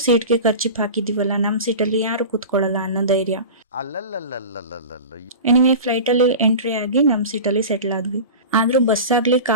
ಸೀಟ್ಗೆ ಖರ್ಚಿಪ್ ಹಾಕಿದೀವಲ್ಲ, ನಮ್ಮ ಸೀಟಲ್ಲಿ ಯಾರು ಕೂತ್ಕೊಳ್ಳಲ್ಲ ಅನ್ನೋ ಧೈರ್ಯ. ಎನಿವೆ, ಫ್ಲೈಟಲ್ಲಿ ಎಂಟ್ರಿ ಆಗಿ ನಮ್ಮ ಸೀಟಲ್ಲಿ ಸೆಟ್ಲ್ ಆದ್ವಿ. ಆದ್ರೂ ಬಸ್ ಆಗ್ಲಿ,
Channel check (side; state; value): both; inverted; correlation -0.32